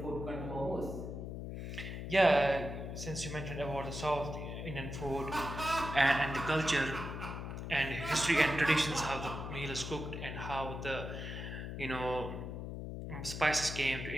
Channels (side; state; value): left; noise; hum, 6 dB below the sound